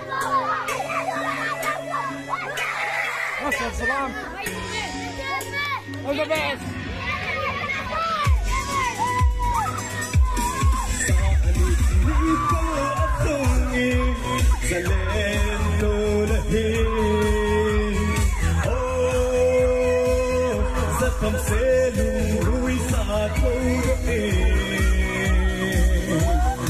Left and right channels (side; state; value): both; identical; correlation 1.00